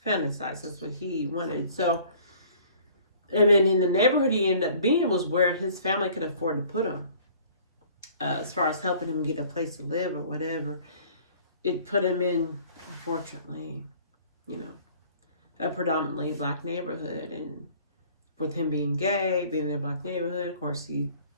fantasized. That's what he wanted. So, and then in the neighborhood he ended up being was where his family could afford to put him. As far as helping him get a place to live or whatever. It put him in, unfortunately, you know, a predominantly black neighborhood. And with him being gay, being in a black neighborhood, of course, he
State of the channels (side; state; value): both; inverted; correlation -0.53